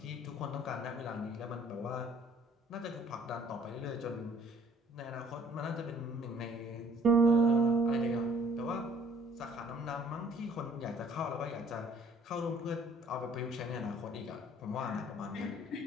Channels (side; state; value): both; normal; correlation 0.58